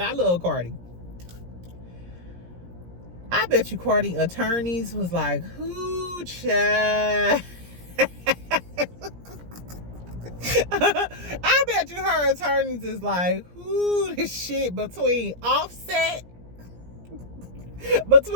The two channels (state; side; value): late; left; 17 ms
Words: I love Cardi. I bet you Cardi attorneys was like, who, child? I bet you her attorneys is like, who, this shit between Offset